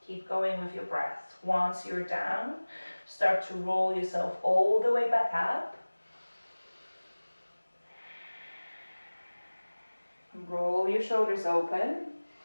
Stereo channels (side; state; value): both; inverted; correlation -1.00